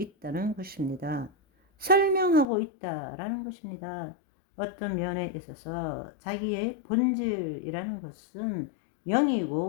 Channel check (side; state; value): right; drops out; at 2.5 s